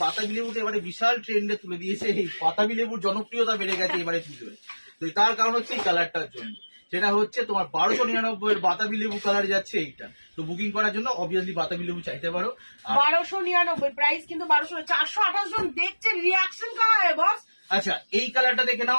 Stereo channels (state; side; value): inverted; both; correlation -1.00